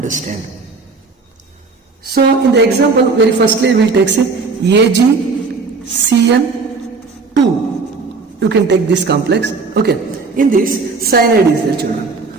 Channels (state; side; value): quieter; left; 4.3 dB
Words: So in the example, very firstly we will take say AgCN2. You can take this complex. Okay. In this, cyanide is there, children.